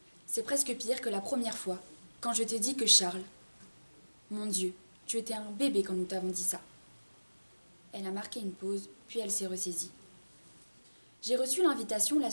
C'est presque pire que la première fois, quand je t'ai dit que Charles... Mon Dieu, tu étais un bébé quand nous t'avons dit ça. » Elle a marqué une pause, puis elle s'est ressaisie. « J'ai reçu l'invitation la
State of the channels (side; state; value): both; inverted; correlation -1.00